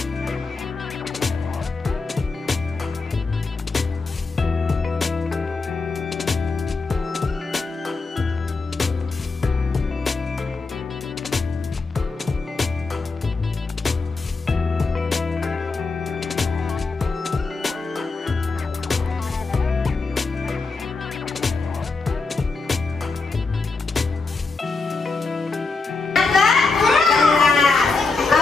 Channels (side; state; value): right; quieter; 4.0 dB